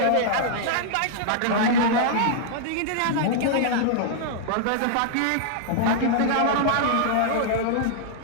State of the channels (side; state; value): both; different; correlation -0.01